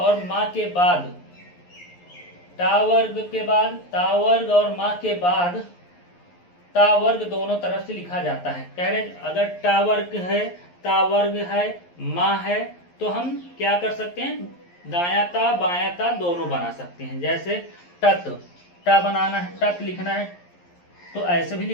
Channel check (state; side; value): late; right; 11 ms